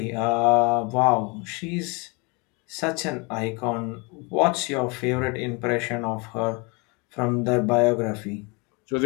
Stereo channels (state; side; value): quieter; right; 29.7 dB